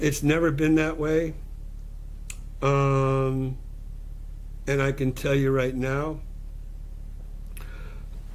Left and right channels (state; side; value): identical; both; correlation 1.00